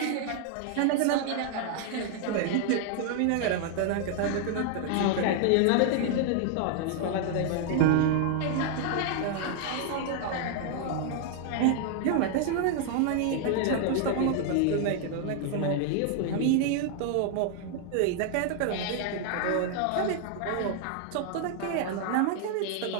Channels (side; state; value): both; different; correlation 0.00